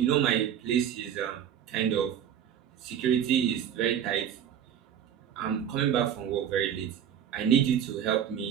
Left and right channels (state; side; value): quieter; left; 9.3 dB